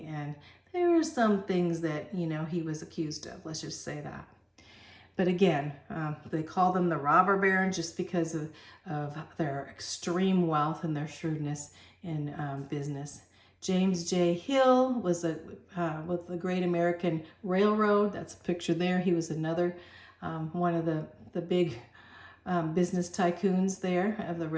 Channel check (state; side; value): identical; both; correlation 1.00